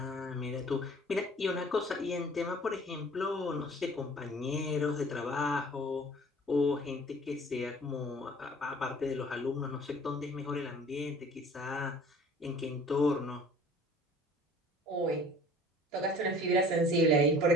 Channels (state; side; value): normal; both; correlation 0.48